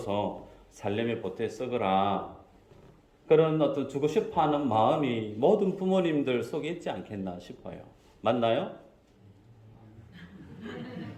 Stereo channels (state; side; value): identical; both; correlation 1.00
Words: 살림에 보태 쓰거라. 그런 어떤 주고 싶어 하는 마음이 모든 부모님들 속에 있지 않겠나 싶어요. 맞나요?